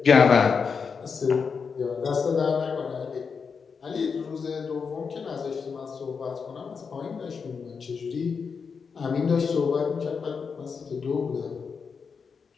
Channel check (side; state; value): right; quieter; 5.7 dB